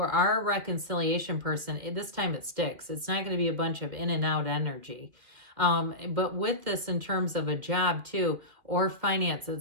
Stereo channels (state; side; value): late; left; 2.4 ms